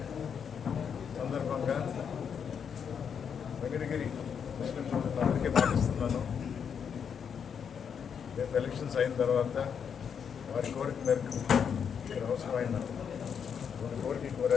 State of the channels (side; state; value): right; quieter; 7.3 dB